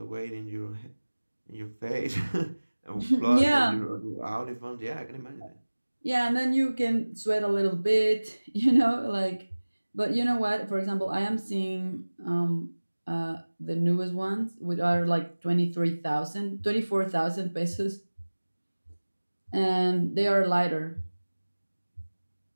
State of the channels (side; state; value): both; inverted; correlation -1.00